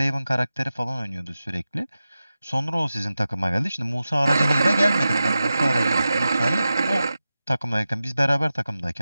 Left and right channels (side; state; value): both; inverted; correlation -0.94